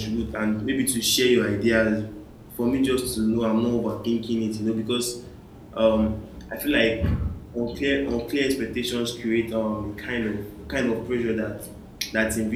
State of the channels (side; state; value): both; identical; correlation 1.00